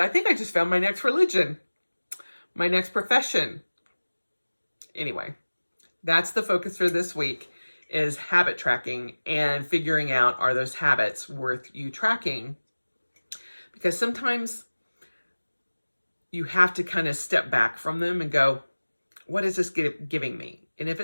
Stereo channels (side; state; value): both; inverted; correlation -1.00